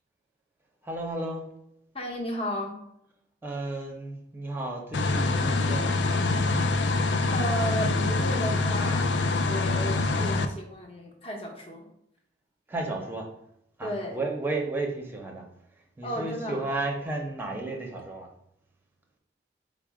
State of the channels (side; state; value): both; normal; correlation 0.53